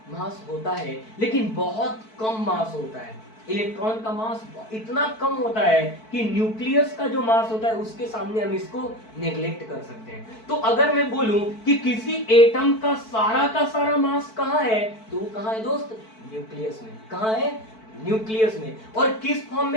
मास होता है, लेकिन बहुत कम मास होता है। इलेक्ट्रॉन का मास इतना कम होता है कि न्यूक्लियस का जो मास होता है उसके सामने हम इसको नेग्लेक्ट कर सकते हैं। तो अगर मैं बोलूं कि किसी एटम का सारा मास कहाँ है, तो वो कहाँ है दोस्त, न्यूक्लियस में। कहाँ है, न्यूक्लियस में। और किस फॉर्म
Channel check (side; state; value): right; late; 4.5 ms